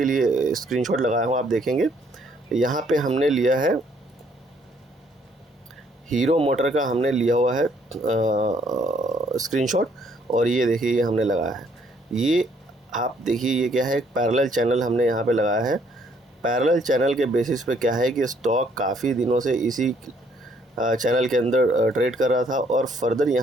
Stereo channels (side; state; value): both; normal; correlation 0.66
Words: लिए स्क्रीनशॉट लगाया हूँ, आप देखेंगे यहाँ पे हमने लिया है हीरो मोटर का, हमने लिया हुआ है स्क्रीनशॉट, और ये देखिए ये हमने लगाया है। ये आप देखिए ये क्या है, एक पैरेलल चैनल हमने यहाँ पे लगाया है। पैरेलल चैनल के बेसिस पे क्या है कि स्टॉक काफ़ी दिनों से इसी चैनल के अंदर ट्रेड कर रहा था और फर्दर